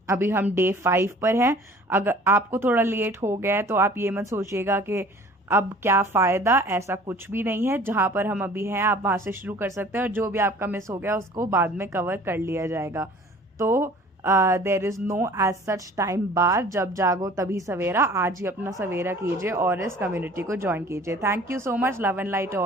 अभी हम डे 5 पर हैं। अगर आपको थोड़ा लेट हो गया है तो आप ये मत सोचिएगा कि अब क्या फ़ायदा, ऐसा कुछ भी नहीं है। जहाँ पर हम अभी हैं आप वहाँ से शुरू कर सकते हैं और जो भी आपका मिस हो गया उसको बाद में कवर कर लिया जाएगा। तो there is no age such time bar, जब जागो तभी सवेरा। आज ही अपना सवेरा कीजिए और इस कम्युनिटी को ज्वाइन कीजिए। Thank you so much. Love and light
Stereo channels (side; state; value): both; normal; correlation 0.49